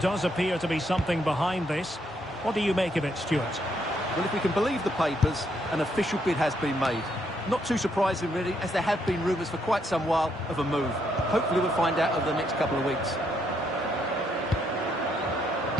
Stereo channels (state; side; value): normal; both; correlation 0.75